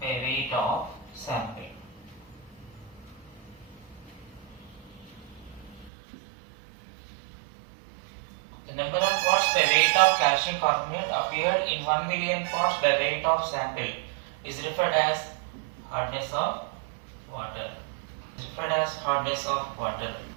weight of sample. The number of parts by weight of calcium carbonate appeared in 1 million parts by weight of sample is referred as hardness of water. Referred as hardness of water.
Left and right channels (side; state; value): left; drops out; at 5.9 s